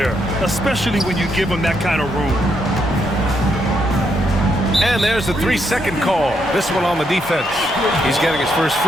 especially when you give him that kind of room. And there's the 3-second call. This one on the defense. He's getting his first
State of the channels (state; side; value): normal; both; correlation 0.77